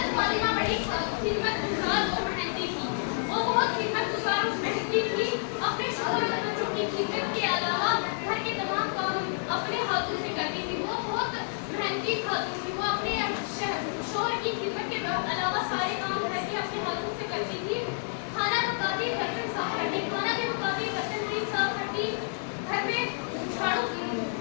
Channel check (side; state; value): right; silent; digital silence